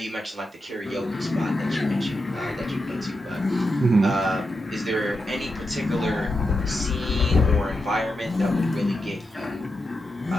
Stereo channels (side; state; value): both; normal; correlation 0.87